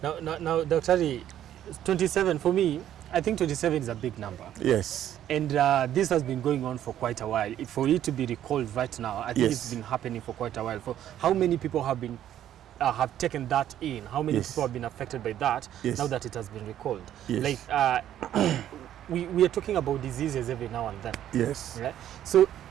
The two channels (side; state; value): left; quieter; 11.4 dB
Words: Now, Dr. Ari, 27 for me, I think 27 is a big number. Yes. And this has been going on for quite a while. For it to be recalled right now, I think it's been happening for quite a while. For how many people have been have taken that in? How many people have been affected by that now that it has been recalled? Like. We are talking about diseases every now and then. Yes. Right? So